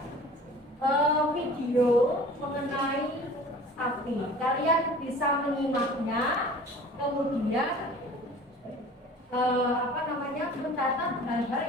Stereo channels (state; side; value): normal; both; correlation 0.44